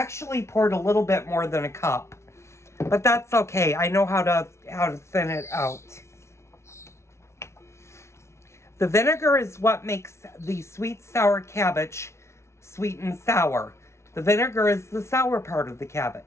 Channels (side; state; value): right; late; 0.13 ms